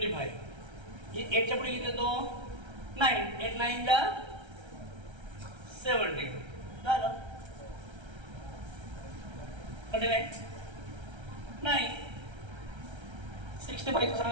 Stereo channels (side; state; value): left; late; 1.3 ms